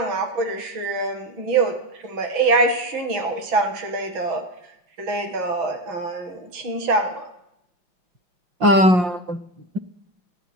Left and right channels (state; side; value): late; left; 5.6 ms